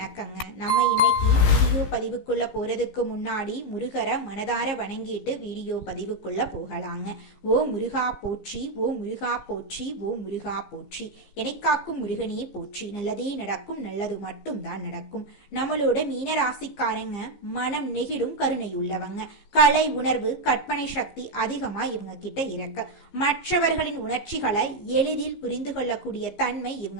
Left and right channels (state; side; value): late; right; 15 ms